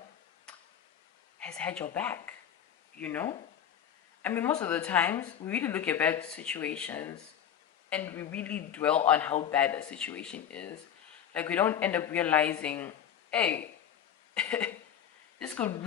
has had your back, you know? I mean, most of the times we really look at bad situations and we really dwell on how bad that situation is. Like, we don't end up realizing, hey, this could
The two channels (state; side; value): quieter; right; 9.2 dB